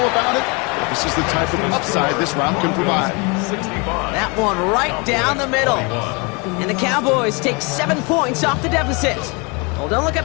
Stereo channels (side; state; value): right; quieter; 30.4 dB